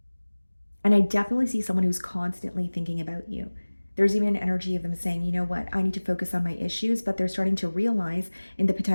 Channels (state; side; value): inverted; both; correlation -1.00